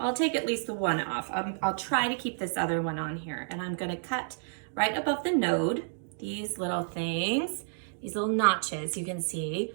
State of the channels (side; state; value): left; silent; digital silence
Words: take at least the one off. I'll try to keep this other one on here, and I'm gonna cut right above the node, these little things, these little notches you can see.